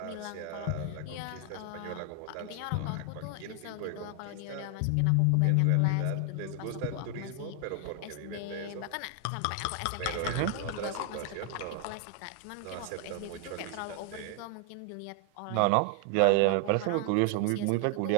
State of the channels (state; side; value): different; both; correlation 0.00